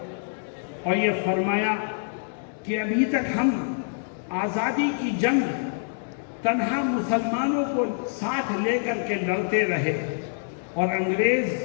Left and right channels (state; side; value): silent; right; digital silence